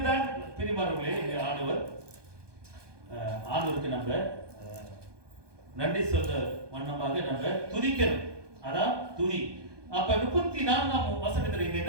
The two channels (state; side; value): late; left; 1.2 ms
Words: பிரிமார்களே, இந்த ஆண்டவருக்கு நம்ம நன்றி சொல்ற வண்ணமாக நம்ம துதிக்கணும். அதான் துதி. அப்ப 34ஆம் வசனத்துல இங்க